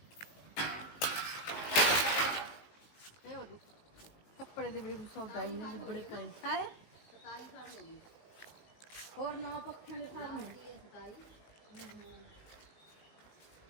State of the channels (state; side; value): late; right; 19 ms